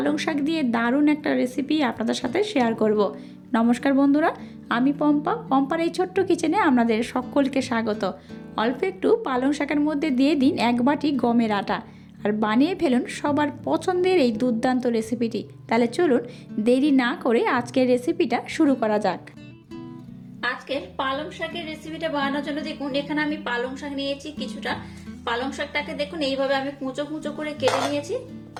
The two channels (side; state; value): both; identical; correlation 1.00